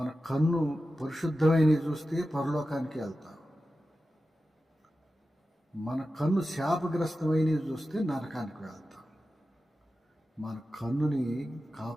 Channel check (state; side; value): normal; both; correlation 0.93